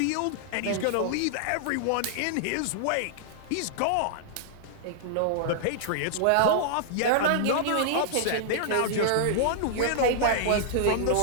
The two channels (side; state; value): both; different; correlation -0.01